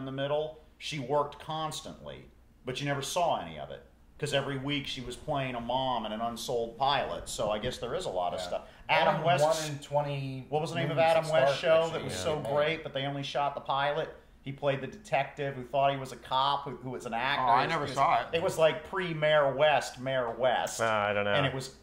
the Middle. She worked constantly, but you never saw any of it because every week she was playing a mom and an unsold pilot. So I guess there is a lot of stuff. Adam West. 1 in 20. What was the name of Adam West's show that was so man. great, but they only shot the pilot? He played the detective who thought he was a cop, who was an actor. Oh, I never saw it. It was like pre-Mayor West, Mayor West. I don't know. And it was,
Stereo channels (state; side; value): identical; both; correlation 1.00